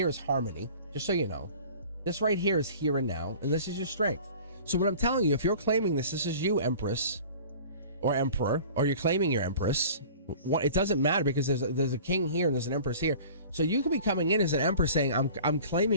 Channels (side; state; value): both; inverted; correlation -0.43